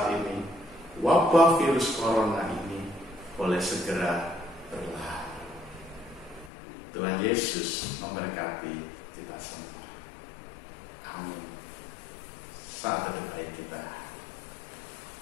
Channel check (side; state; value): right; drops out; at 6.5 s